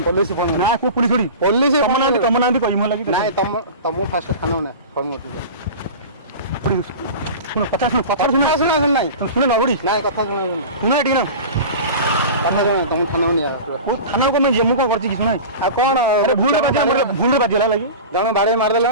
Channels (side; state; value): both; inverted; correlation -0.33